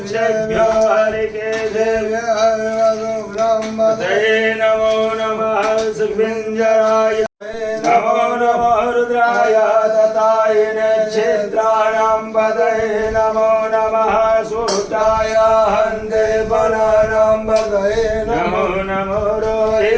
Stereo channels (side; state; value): both; identical; correlation 1.00